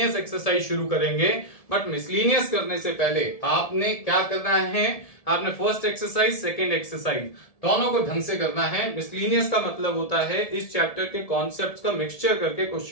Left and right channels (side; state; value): right; late; 1.7 ms